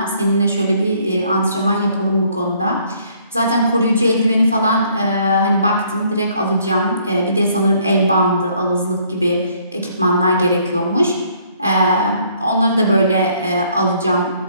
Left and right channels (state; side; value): inverted; both; correlation -0.64